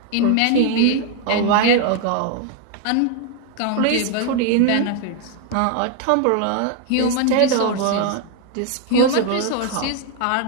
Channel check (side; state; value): both; different; correlation 0.00